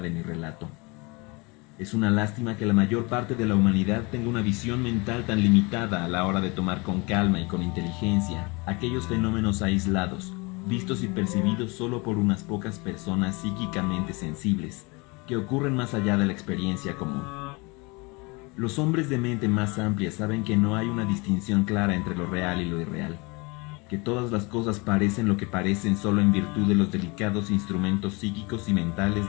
de mi relato. Es una lástima que la mayor parte de la humanidad tenga una visión mental tan limitada a la hora de tomar con calma y con inteligencia aquellos fenómenos aislados, vistos y percibidos solo por unas pocas personas psíquicamente sensibles, que ocurren más allá de la experiencia común. Los hombres de mente más amplia saben que no hay una distinción clara entre lo real y lo irreal, que todas las cosas parecen lo que parecen solo en virtud de los delicados instrumentos psíquicos y mentales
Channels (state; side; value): quieter; right; 27.8 dB